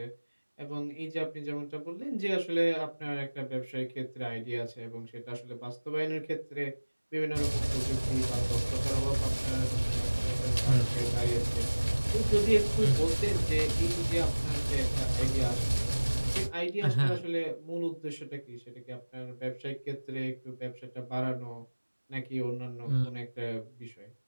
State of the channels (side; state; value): both; inverted; correlation -1.00